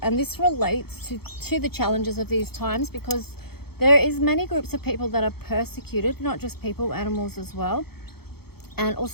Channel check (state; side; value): late; right; 0.96 ms